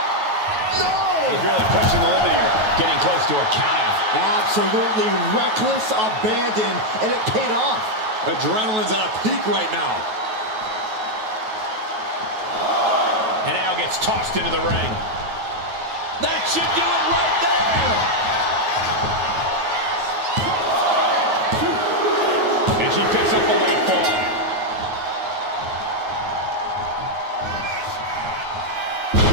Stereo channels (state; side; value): late; left; 9.3 ms